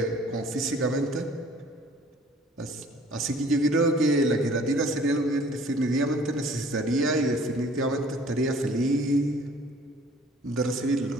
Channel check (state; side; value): normal; both; correlation 0.53